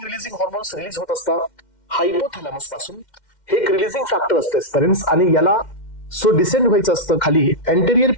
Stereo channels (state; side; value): late; right; 2.1 ms